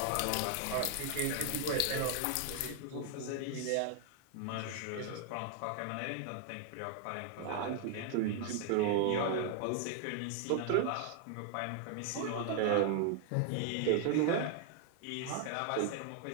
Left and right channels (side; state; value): both; different; correlation 0.00